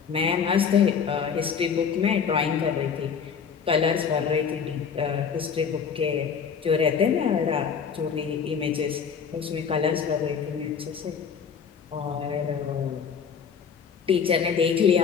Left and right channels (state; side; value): quieter; right; 6.7 dB